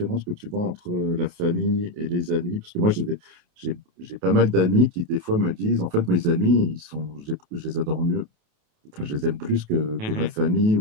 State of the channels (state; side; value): late; left; 28 ms